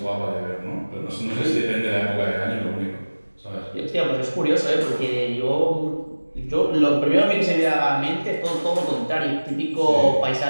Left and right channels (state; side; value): inverted; both; correlation -1.00